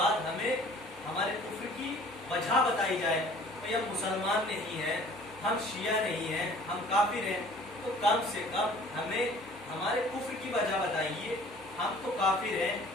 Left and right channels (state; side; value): noise; left; hum, 30 dB below the sound